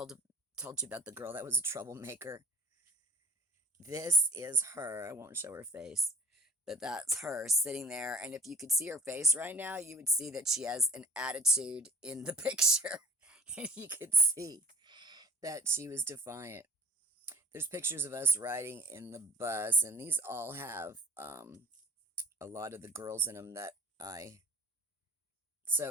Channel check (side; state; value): both; normal; correlation 0.46